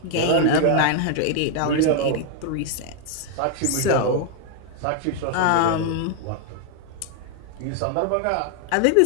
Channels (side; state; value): both; different; correlation 0.00